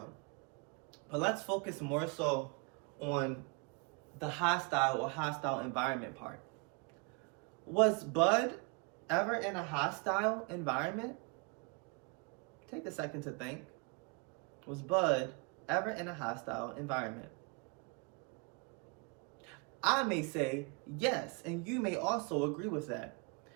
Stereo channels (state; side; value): quieter; left; 30.8 dB